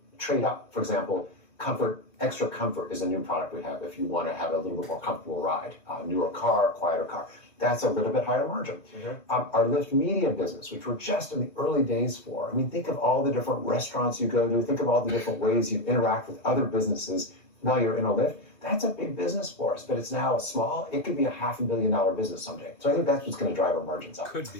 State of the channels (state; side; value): late; right; 2.7 ms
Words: trade up. For example, comfort, extra comfort is a new product we have if you want to have a little bit more comfortable ride. Newer car, quieter car. That's a little bit higher margin. Mm-hmm. Our Lyft Media business, which we're just in the early days for. Think of all the different restaurants you go to. Think of all the different ways you interact with other businesses while you're in a Lyft. That's a big business for us, but it's now small. It could be a $500 million business someday. So I think that's what's going to drive our margins up. Could be.